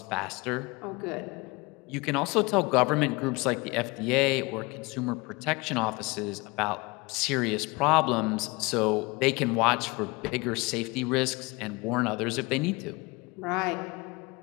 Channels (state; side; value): quieter; right; 25.0 dB